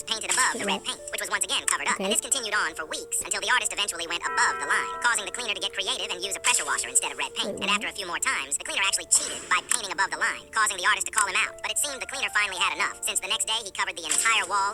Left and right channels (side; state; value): both; identical; correlation 1.00